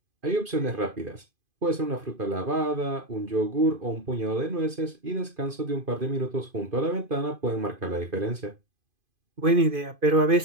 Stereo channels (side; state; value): left; late; 2.5 ms